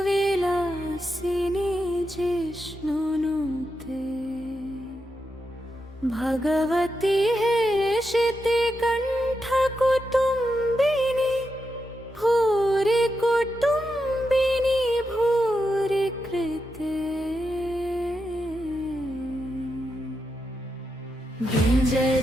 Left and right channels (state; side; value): normal; both; correlation 0.86